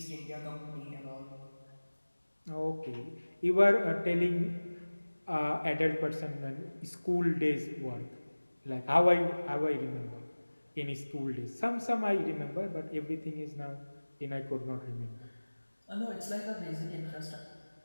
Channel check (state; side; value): inverted; both; correlation -1.00